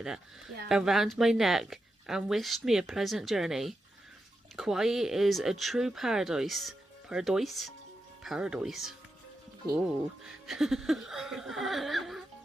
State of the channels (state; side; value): normal; both; correlation 0.88